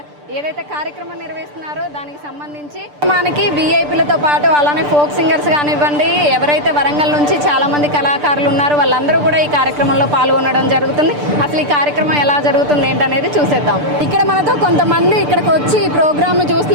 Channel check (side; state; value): left; late; 6.8 ms